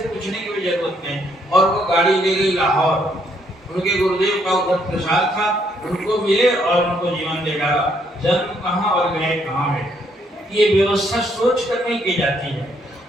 पूछने की भी जरूरत नहीं और वो गाड़ी ले गई लाहौर। उनके गुरुदेव का उधर प्रसाद था, उनको मिले और उनको जीवन दे डाला। जन्म कहाँ और गए कहाँ में, ये व्यवस्था सोच कर नहीं की जाती है।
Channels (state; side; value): normal; both; correlation 0.71